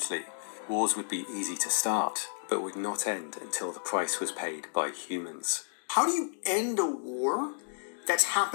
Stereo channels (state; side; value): silent; right; digital silence